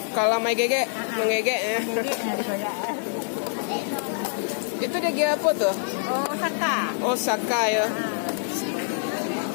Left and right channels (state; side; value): silent; right; digital silence